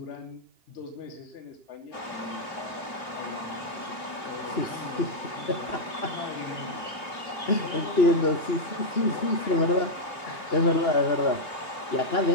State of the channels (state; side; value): late; right; 3.0 ms